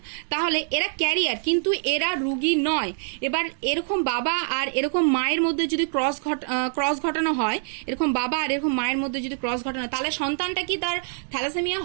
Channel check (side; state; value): left; silent; digital silence